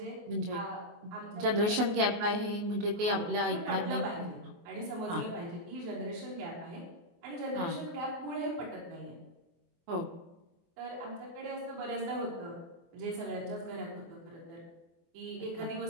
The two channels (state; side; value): late; left; 24 ms